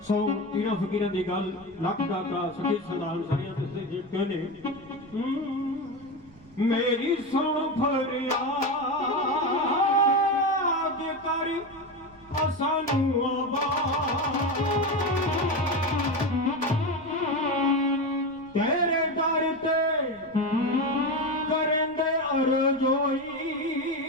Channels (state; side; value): noise; right; rumble, 27 dB below the sound